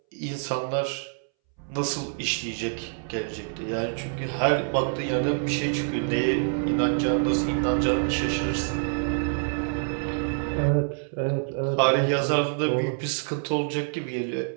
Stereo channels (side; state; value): left; silent; 61 dB below the other